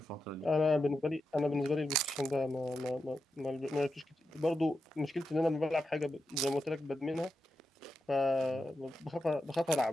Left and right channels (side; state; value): both; normal; correlation 0.88